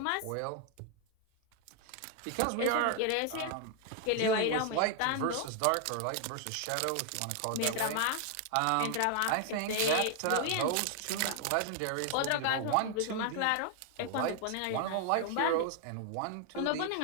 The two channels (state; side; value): different; both; correlation 0.00